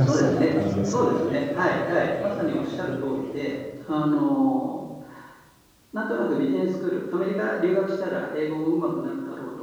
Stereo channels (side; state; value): both; identical; correlation 1.00